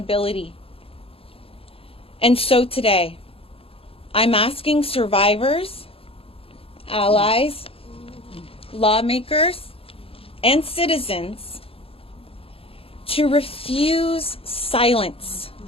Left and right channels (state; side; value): late; right; 0.27 ms